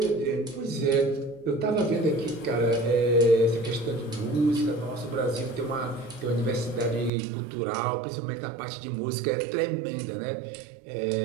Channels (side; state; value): left; drops out; at 7.1 s